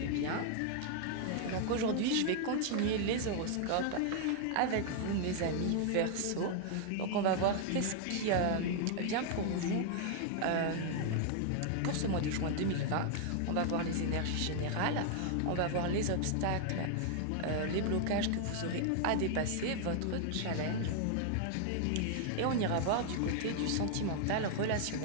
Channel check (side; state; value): both; different; correlation 0.00